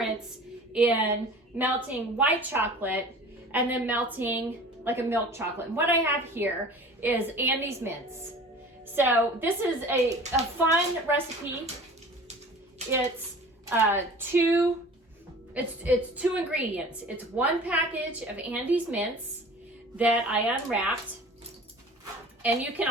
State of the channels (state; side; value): normal; both; correlation 0.42